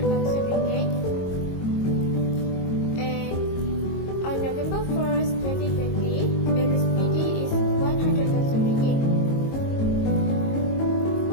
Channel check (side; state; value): right; late; 22 ms